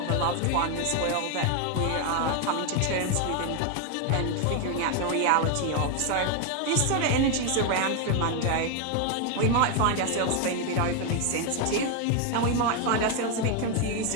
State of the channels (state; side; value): different; both; correlation 0.01